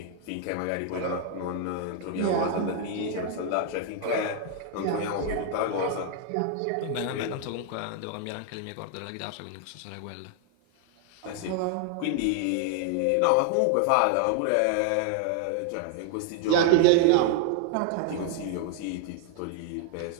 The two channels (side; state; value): both; different; correlation 0.00